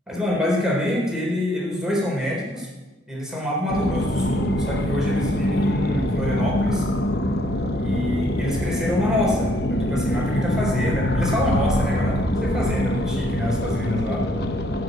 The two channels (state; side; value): normal; both; correlation 0.67